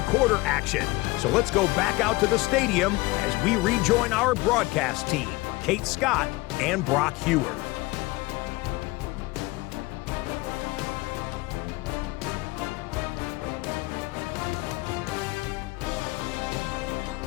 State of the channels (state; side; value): quieter; right; 21.6 dB